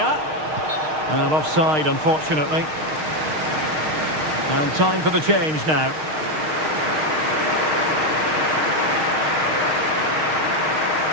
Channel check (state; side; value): late; left; 6.4 ms